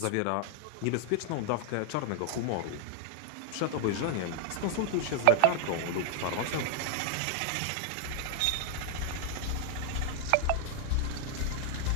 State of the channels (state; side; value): different; both; correlation 0.00